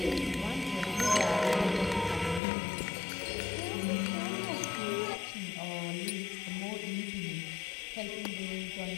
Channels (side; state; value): right; drops out; at 2.4 s